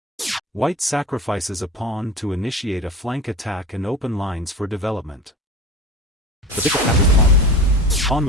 White sacrifices a pawn to initiate a flank attack and open lines for development. The bishop captures the pawn. Pawn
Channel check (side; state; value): both; normal; correlation 0.34